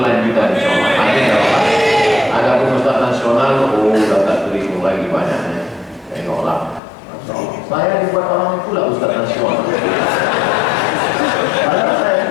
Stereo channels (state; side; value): drops out; right; at 6.8 s